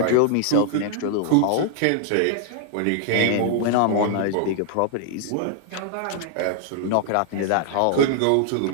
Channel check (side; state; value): both; different; correlation 0.00